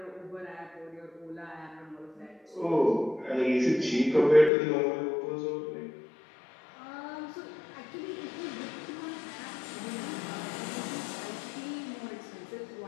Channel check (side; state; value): right; drops out; at 4.5 s